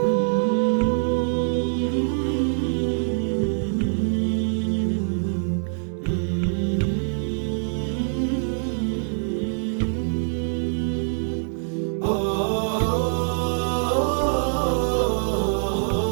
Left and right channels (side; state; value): left; silent; digital silence